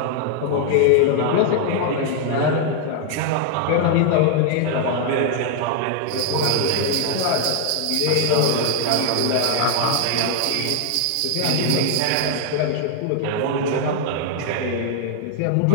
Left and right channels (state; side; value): different; both; correlation 0.00